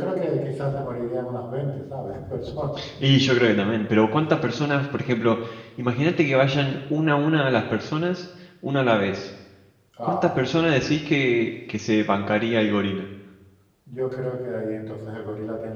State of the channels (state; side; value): identical; both; correlation 1.00